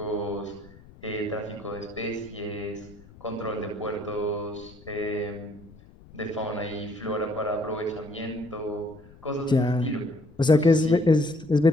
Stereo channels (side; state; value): left; noise; rumble, 22 dB below the sound